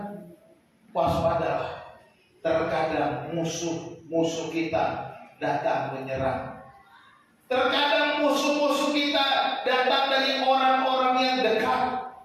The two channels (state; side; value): identical; both; correlation 1.00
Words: waspadalah. Terkadang musuh-musuh kita datang menyerang. Terkadang musuh-musuh kita datang dari orang-orang yang dekat.